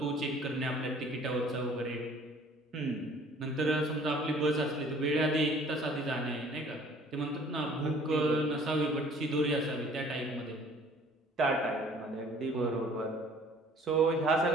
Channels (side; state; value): both; normal; correlation 0.54